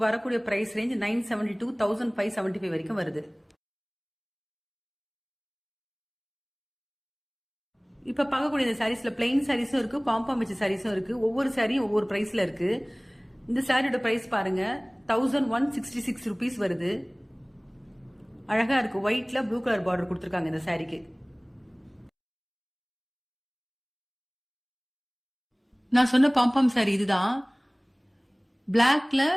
வரக்கூடிய பிரைஸ் ரேஞ்ச் 972 1575 வரைக்கும் வருது. இப்ப பார்க்கக்கூடிய இந்த சாரீஸ்ல பிளைன் சாரீஸும் இருக்கு, பாம்பாம் வச்ச சாரீஸும் இருக்கு. ஒவ்வொரு சாரியும் ஒவ்வொரு பிரைஸ்ல இருக்கு. இந்த சாரியோட பிரைஸ் பாருங்க 1166 ருபீஸ் வருது. அழகா இருக்கு. ஒயிட்ல ப்ளூ கலர் பார்டர் கொடுத்துருக்காங்க இந்த சாரிக்கு. நான் சொன்ன பாம்பாம் சாரி இதுதான். பிளாக்ல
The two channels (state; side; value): identical; both; correlation 1.00